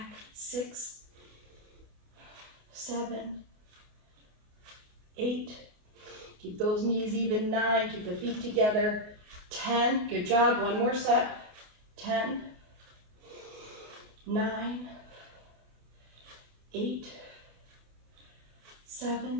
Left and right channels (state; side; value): late; left; 28 ms